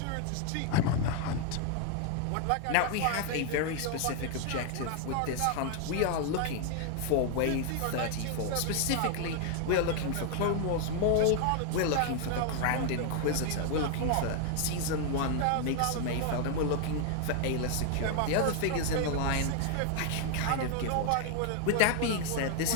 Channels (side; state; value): both; different; correlation 0.00